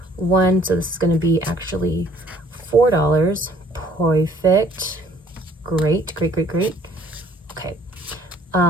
1. So this is going to be actually $4. Perfect. Great, great, great, great. Okay.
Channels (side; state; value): both; normal; correlation 0.59